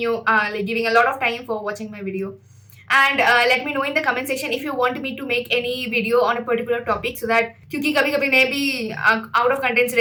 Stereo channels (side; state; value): both; identical; correlation 1.00